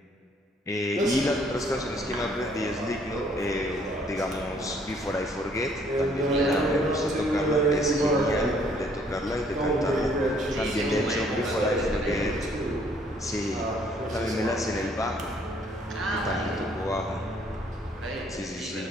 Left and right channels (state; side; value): normal; both; correlation 0.63